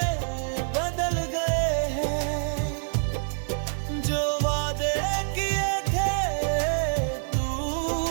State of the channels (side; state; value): left; silent; 60 dB below the other